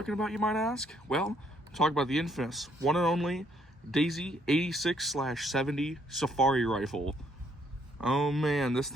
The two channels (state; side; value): normal; both; correlation 0.69